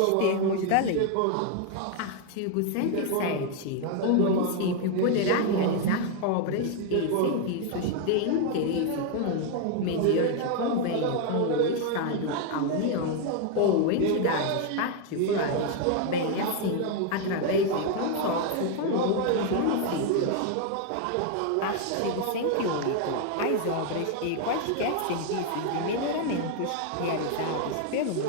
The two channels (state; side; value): different; both; correlation 0.00